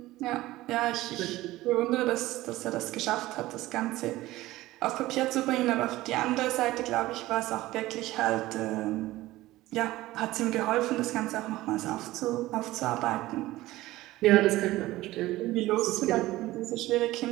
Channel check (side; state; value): left; quieter; 17.2 dB